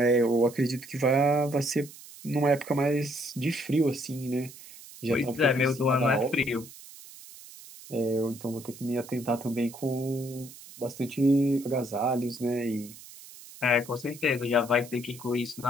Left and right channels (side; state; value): right; noise; hiss, 18 dB below the sound